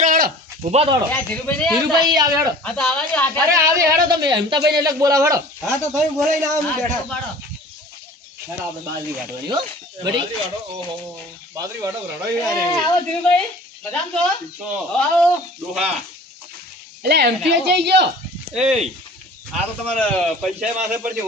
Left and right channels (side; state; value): both; normal; correlation 0.45